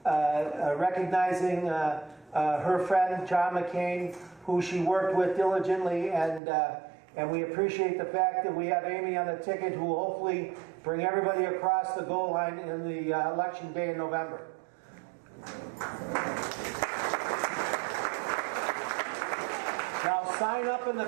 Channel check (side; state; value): left; drops out; at 6.4 s